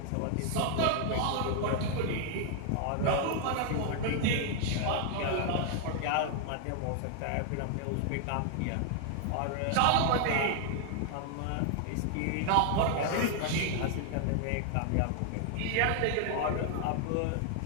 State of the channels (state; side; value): different; both; correlation 0.00